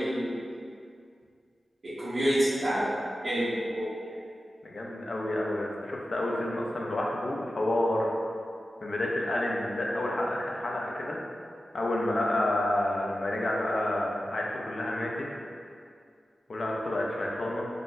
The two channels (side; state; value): both; normal; correlation 0.93